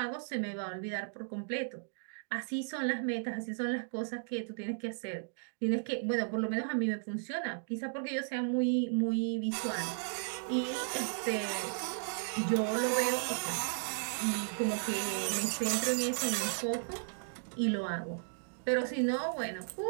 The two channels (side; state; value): left; silent; digital silence